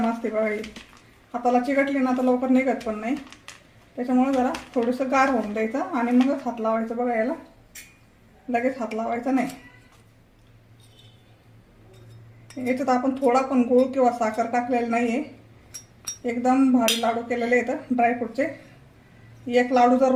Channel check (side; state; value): both; identical; correlation 1.00